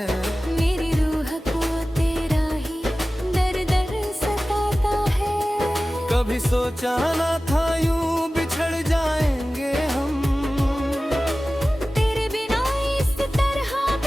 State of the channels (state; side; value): normal; both; correlation 0.96